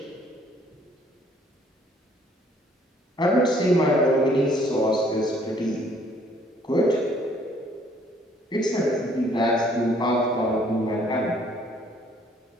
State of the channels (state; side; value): normal; both; correlation 0.62